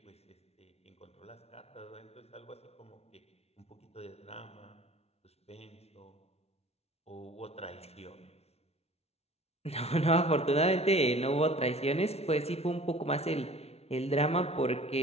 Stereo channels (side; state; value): right; late; 0.31 ms